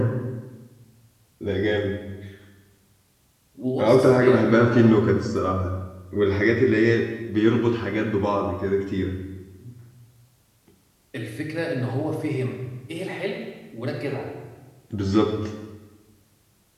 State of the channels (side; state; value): both; identical; correlation 1.00